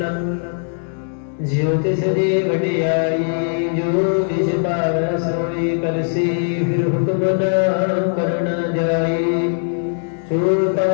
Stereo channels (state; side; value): silent; right; digital silence